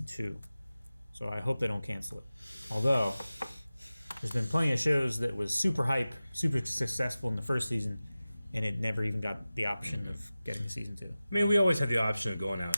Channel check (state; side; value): inverted; both; correlation -0.96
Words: 2. So I hope they don't cancel it. Although, there's been plenty of shows that was super hype, super successful in the first season, and it never even got the option of getting a season 2. I mean, we always had the option of going out